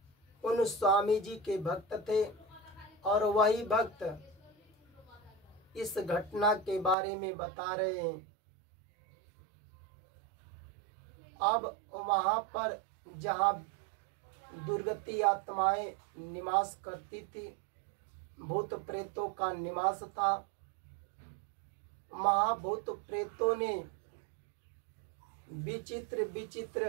उन स्वामी जी के भक्त थे। और वही भक्त इस घटना के बारे में बता रहे हैं। अब वहां पर जहाँ दुर्गति आत्माएं निवास करती थी, भूत प्रेतों का निवास था, वहाँ भूत प्रेतों ने विचित्र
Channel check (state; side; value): drops out; left; at 7.0 s